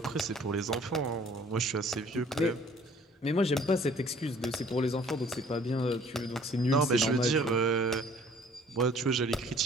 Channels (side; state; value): both; normal; correlation 0.55